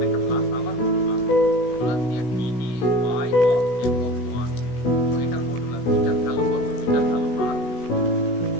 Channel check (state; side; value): late; right; 16 ms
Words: একটা প্লাস, আবার মডুলাস দিয়ে dy of f of 1। তো এটার মডুলাস, এটার ভ্যালু কত? এটার ভ্যালু আর